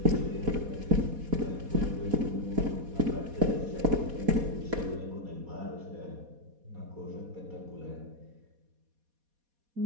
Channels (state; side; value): late; left; 4.2 ms